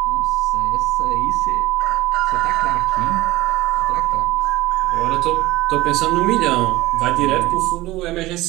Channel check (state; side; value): quieter; left; 18.4 dB